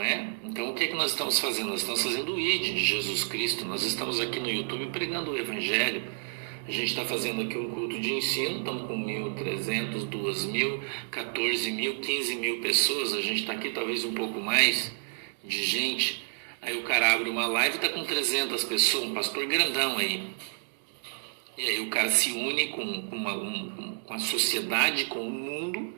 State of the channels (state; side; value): silent; left; digital silence